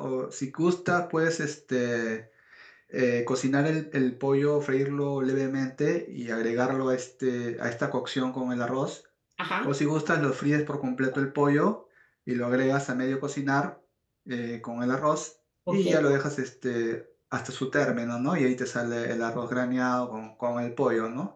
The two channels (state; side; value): identical; both; correlation 1.00